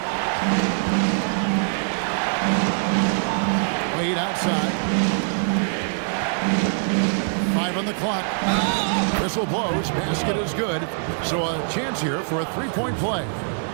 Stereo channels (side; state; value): left; silent; digital silence